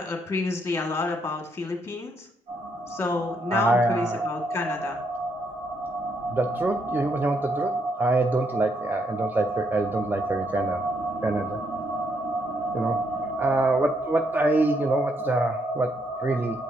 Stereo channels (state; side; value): normal; both; correlation 0.75